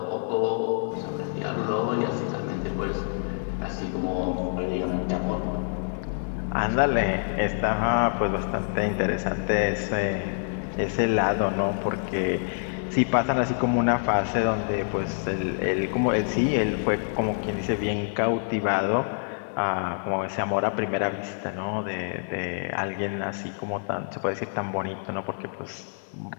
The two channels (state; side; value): silent; right; digital silence